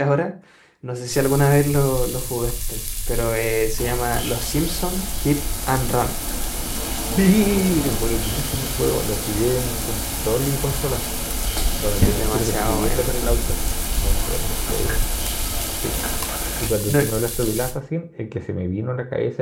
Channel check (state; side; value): identical; both; correlation 1.00